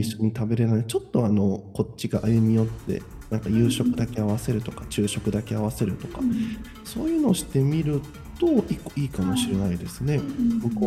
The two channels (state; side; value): identical; both; correlation 1.00